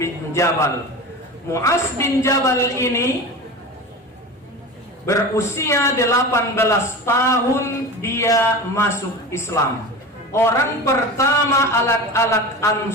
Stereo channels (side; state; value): both; normal; correlation 0.30